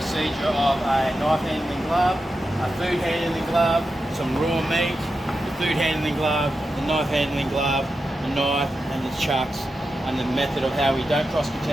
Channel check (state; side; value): normal; both; correlation 0.89